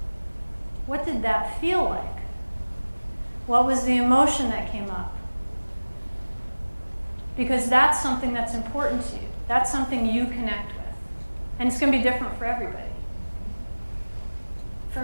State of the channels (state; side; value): inverted; both; correlation -1.00